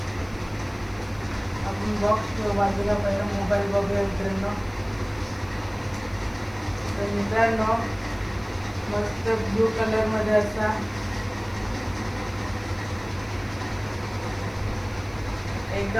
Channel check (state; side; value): noise; left; hiss, 27 dB below the sound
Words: आपण बॉक्स बाजूला पहिला मोबाईल बघूया मित्रांनो. तर मित्रांनो, मस्त ब्लू कलर मध्ये असा